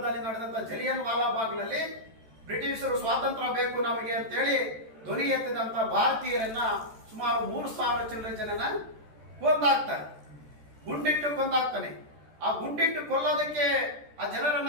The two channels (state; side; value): late; left; 14 ms